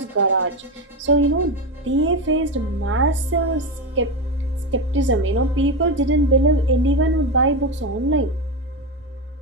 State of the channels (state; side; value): normal; both; correlation 0.14